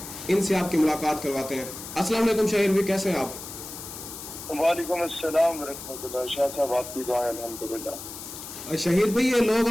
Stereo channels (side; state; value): left; noise; hiss, 11 dB below the sound